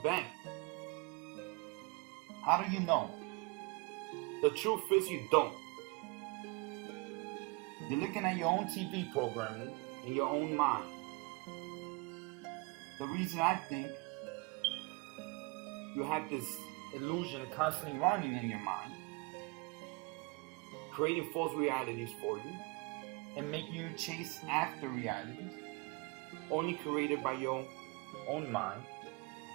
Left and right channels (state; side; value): quieter; left; 27.4 dB